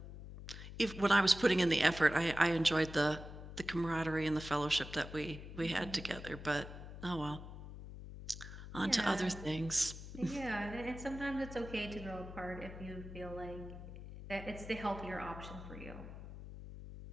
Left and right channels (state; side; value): noise; left; hum, 12 dB below the sound